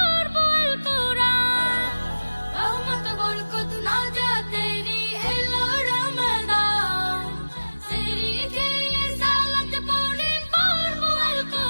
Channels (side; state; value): both; inverted; correlation -1.00